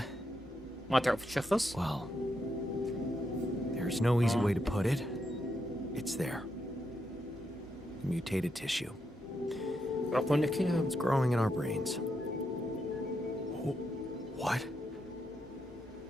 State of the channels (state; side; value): normal; both; correlation 0.82